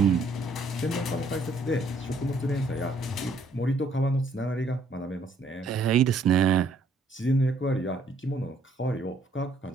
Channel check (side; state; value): left; quieter; 3.0 dB